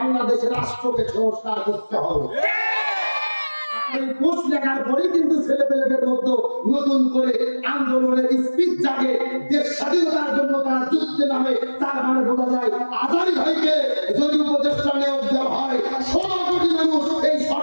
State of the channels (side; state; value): both; inverted; correlation -1.00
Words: রাষ্ট্রকে সংস্কার করতে হবে। এই পোস্ট লেখার পরে কিন্তু ছেলেপেলেদের মধ্যে নতুন করে আন্দোলনের স্পিচ জাগে, দেশ স্বাধীনতার জন্য তারা যুদ্ধে নামে। তার মানে বোঝা যায় আজহারি ভাইকে যদি উপদেষ্টা নিয়োগ দেওয়া হয়, 16 কোটি মানুষ এই